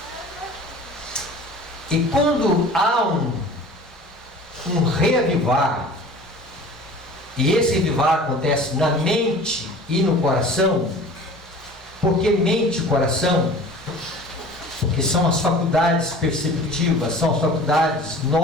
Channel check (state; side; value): normal; both; correlation 0.43